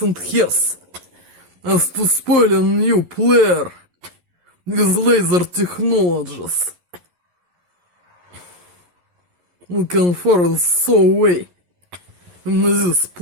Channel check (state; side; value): late; left; 11 ms